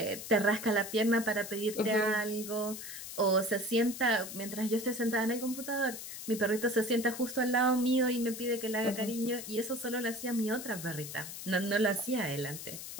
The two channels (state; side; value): noise; left; hiss, 9 dB below the sound